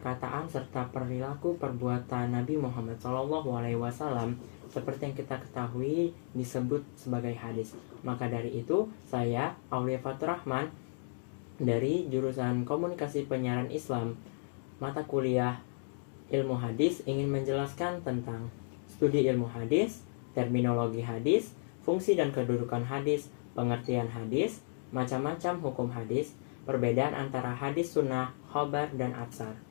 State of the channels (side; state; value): right; silent; digital silence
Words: serta perilaku perbuatan Nabi Muhammad SAW seperti yang kita ketahui disebut sebagai hadis. Maka dari itu, saya Aulia Fatur Rahman dari jurusan Komunikasi Penyiaran Islam, mata kuliah Ilmu Hadis, ingin menjelaskan tentang studi ilmu hadis, terminologi hadis, fungsi dan kedudukan hadis, pengertian hadis, macam-macam hukum hadis, perbedaan antara hadis sunnah, khobar, dan atsar.